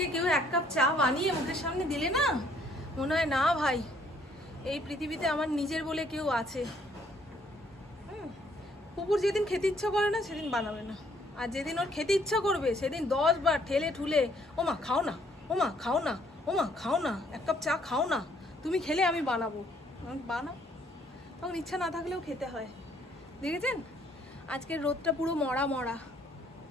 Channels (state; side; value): normal; both; correlation 0.64